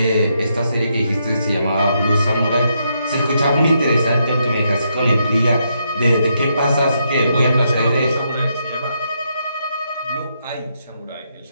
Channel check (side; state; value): both; inverted; correlation -0.79